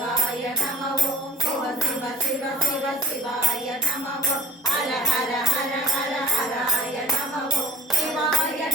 சிவாய நமவோ ஹர ஹர ஹர ஹர ஹராய நமவோ சிவாய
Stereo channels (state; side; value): normal; both; correlation 0.46